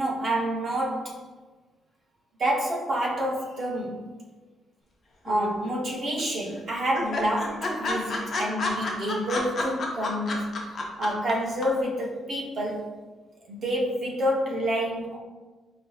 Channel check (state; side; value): normal; both; correlation 0.74